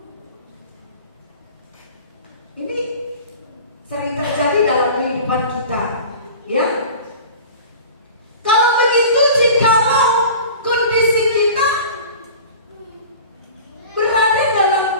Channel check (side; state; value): both; inverted; correlation -0.39